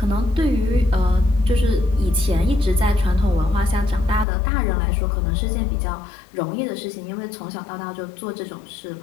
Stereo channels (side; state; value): right; drops out; at 4.2 s